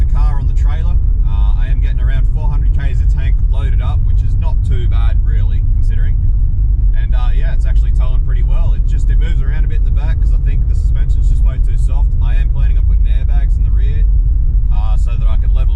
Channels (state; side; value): identical; both; correlation 1.00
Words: a car on the trailer. I am getting around 400 Ks a tank loaded up, which is not too bad really, considering. And yeah, it's actually towing pretty well. It moves around a bit in the back because I think the suspension's just way too soft. I am planning on putting airbags in the rear so that I can